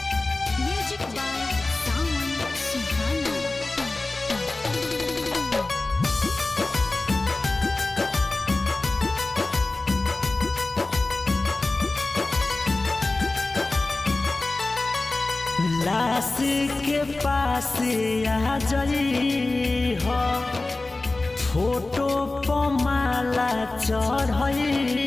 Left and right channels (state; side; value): quieter; right; 3.1 dB